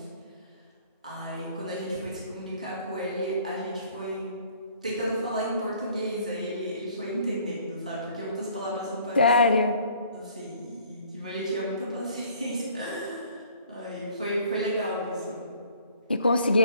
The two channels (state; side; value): inverted; both; correlation -0.56